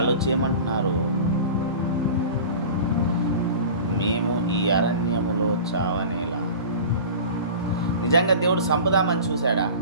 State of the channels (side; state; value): both; inverted; correlation -0.37